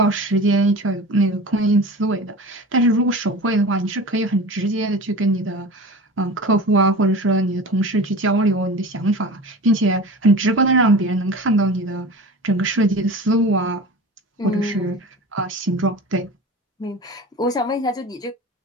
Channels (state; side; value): normal; both; correlation 0.34